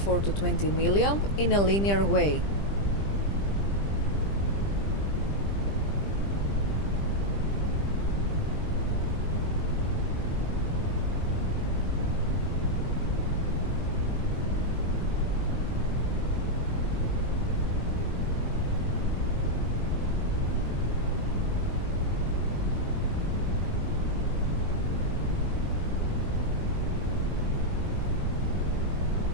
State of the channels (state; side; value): late; right; 20 ms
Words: to 20 milliamp in a linear way.